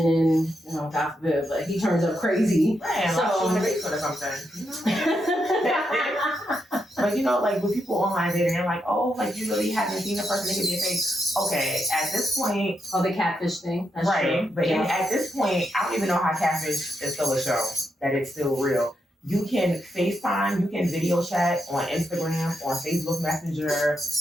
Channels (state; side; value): normal; both; correlation 0.83